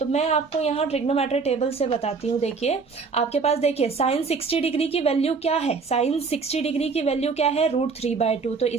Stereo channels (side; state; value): left; quieter; 4.8 dB